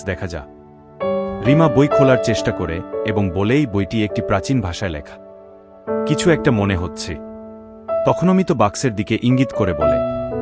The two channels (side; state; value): both; identical; correlation 1.00